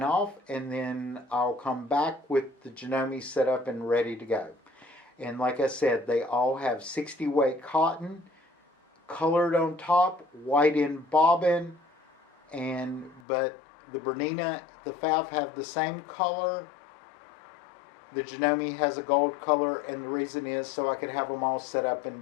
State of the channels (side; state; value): right; drops out; at 13.2 s